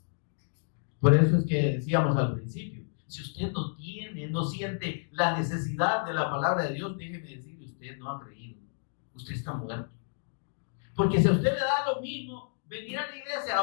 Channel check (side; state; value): right; silent; digital silence